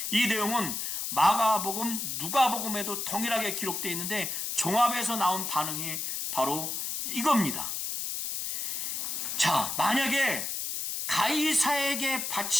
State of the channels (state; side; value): noise; left; hiss, 3 dB below the sound